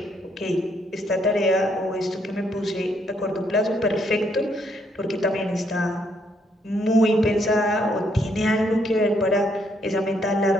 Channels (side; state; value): both; normal; correlation 0.72